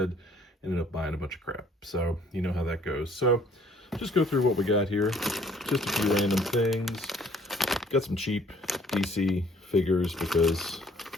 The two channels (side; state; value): both; normal; correlation 0.59